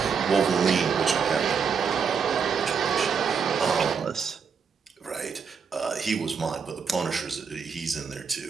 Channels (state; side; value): quieter; left; 6.2 dB